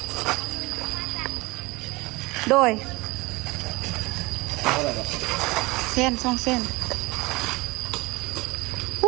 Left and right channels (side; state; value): left; quieter; 23.2 dB